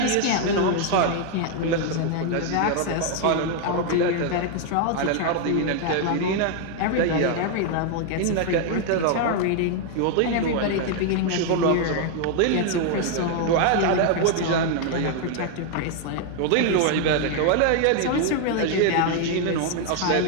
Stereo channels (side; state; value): both; different; correlation 0.00